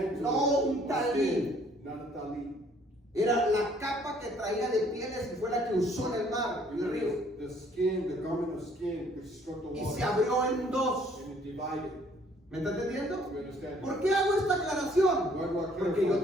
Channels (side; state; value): both; normal; correlation 0.61